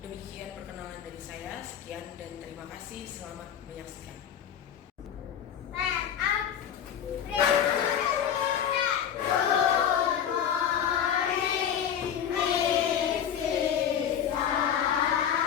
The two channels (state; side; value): quieter; right; 9.0 dB